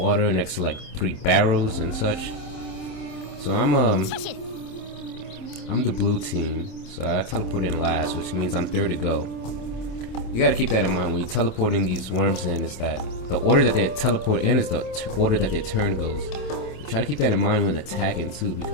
next to like 3 barrels and such. So I'm the blue team, so I teleport in last, which means I'm third to go. You gotta keep that in mind when you're teleporting these worms in, is that the order that they teleport in is the order that their turn goes. So try to keep that in mind when attacking too,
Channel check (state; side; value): late; right; 26 ms